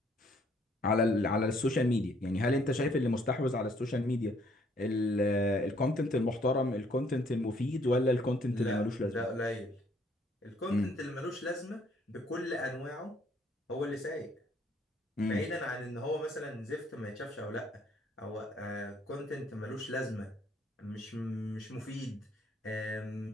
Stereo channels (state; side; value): normal; both; correlation 0.64